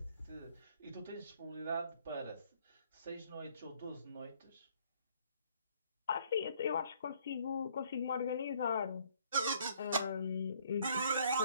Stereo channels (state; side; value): inverted; both; correlation -0.63